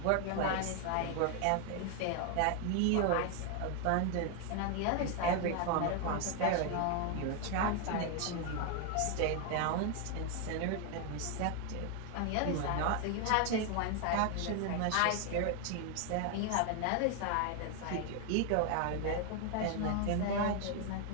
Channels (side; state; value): both; different; correlation 0.01